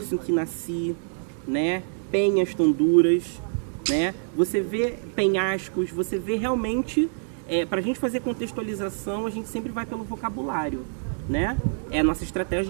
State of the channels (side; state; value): left; silent; digital silence